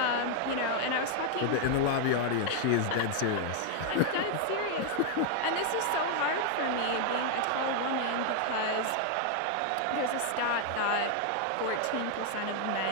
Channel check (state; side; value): different; both; correlation 0.00